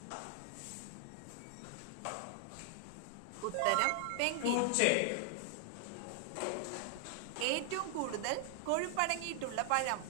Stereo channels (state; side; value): different; both; correlation 0.00